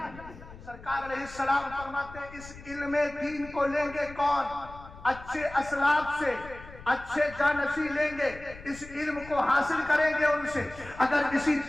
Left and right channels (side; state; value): left; noise; rumble, 17 dB below the sound